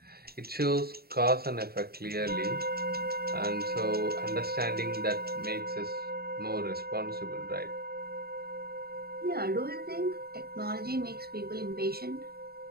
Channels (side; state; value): left; late; 0.45 ms